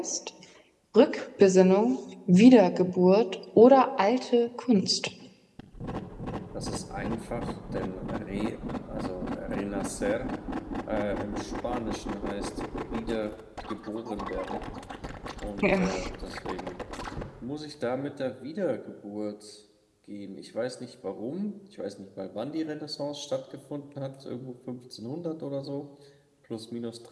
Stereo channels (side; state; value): both; identical; correlation 1.00